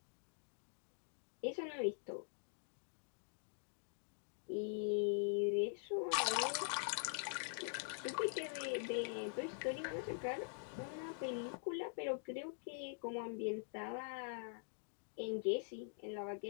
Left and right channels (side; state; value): right; silent; digital silence